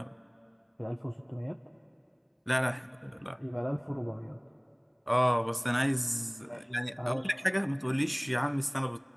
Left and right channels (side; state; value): both; identical; correlation 1.00